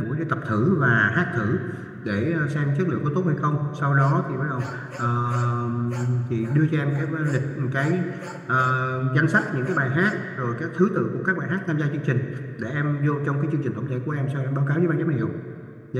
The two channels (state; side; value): identical; both; correlation 1.00